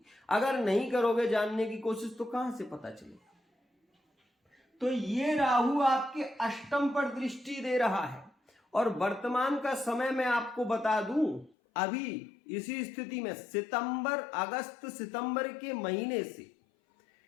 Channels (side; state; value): right; drops out; at 11.6 s